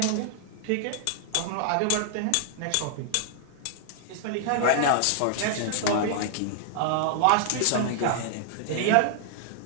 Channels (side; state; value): both; different; correlation -0.01